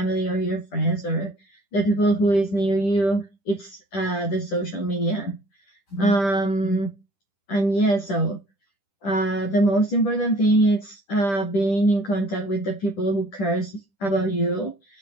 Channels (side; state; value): right; late; 10 ms